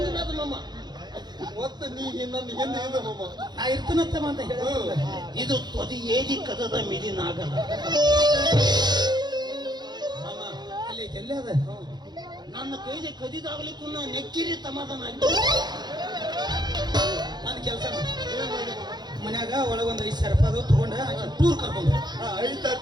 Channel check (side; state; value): left; late; 0.21 ms